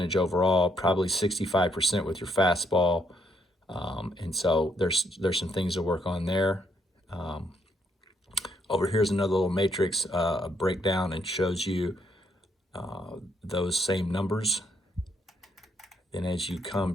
overall, probably 65% with your fastball. And so there's some things to work on there. Over here's another little matrix, a breakdown, and shows you those same numbers. Then as you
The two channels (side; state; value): both; normal; correlation 0.74